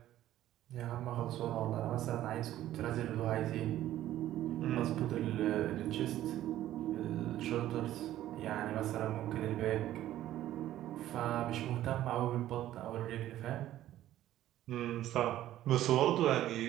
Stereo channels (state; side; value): quieter; left; 13.4 dB